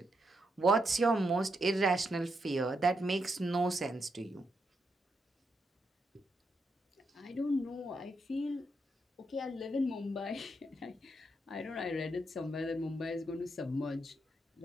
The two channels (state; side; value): normal; both; correlation 0.81